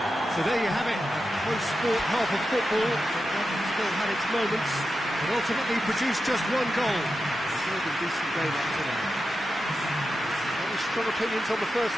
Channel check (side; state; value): both; normal; correlation 0.90